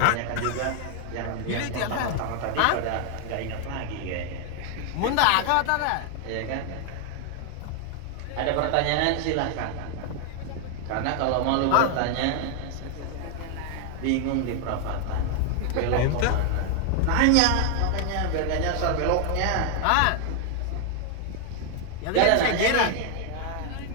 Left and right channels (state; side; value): different; both; correlation 0.00